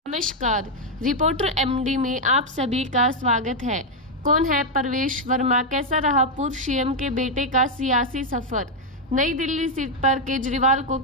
नमस्कार, reporter MD में आप सभी का स्वागत है। कौन है परवेश वर्मा, कैसा रहा पूर्व सीएम के बेटे का सियासी सफर, नई दिल्ली सीट पर केजरीवाल को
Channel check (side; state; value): both; normal; correlation 0.01